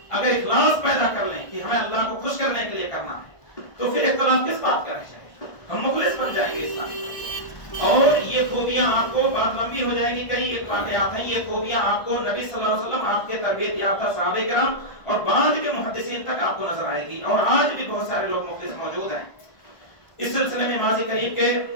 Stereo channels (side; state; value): right; late; 1.5 ms